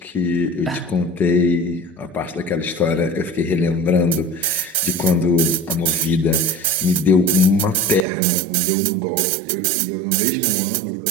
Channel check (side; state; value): left; drops out; at 8.0 s